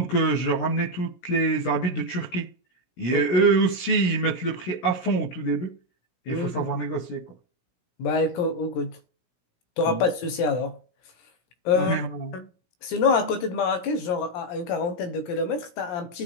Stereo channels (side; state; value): right; late; 17 ms